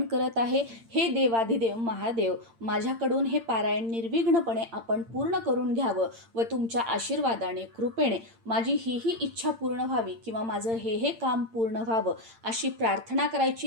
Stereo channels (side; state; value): left; late; 8.8 ms